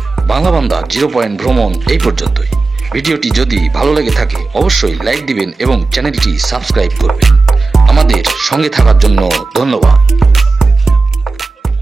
বাংলা বান্দা 0 পয়েন্ট ভ্রমণ এই পর্যন্তই। ভিডিওটি যদি ভালো লেগে থাকে অবশ্যই লাইক দিবেন এবং চ্যানেলটি সাবস্ক্রাইব করবেন। আমাদের সঙ্গে থাকার জন্য ধন্যবাদ।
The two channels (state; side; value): quieter; left; 3.7 dB